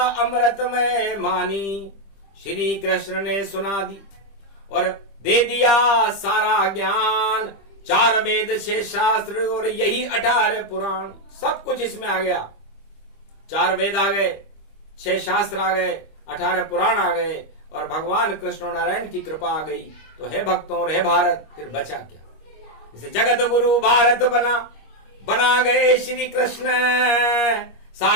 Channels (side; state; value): right; late; 25 ms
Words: अमृतमय मानी, श्री कृष्ण ने सुना दी और दे दिया सारा ज्ञान। 4 वेद 6 शास्त्र और यही 18 पुराण, सब कुछ इसमें आ गया। 4 वेद आ गए, 6 शास्त्र आ गए, 18 पुराण आ गए, और भगवान कृष्ण नारायण की कृपा आ गई। तो हे भक्तों और हे भारत, फिर बचा क्या? इसे जगत गुरु भारत बना गए श्री कृष्ण।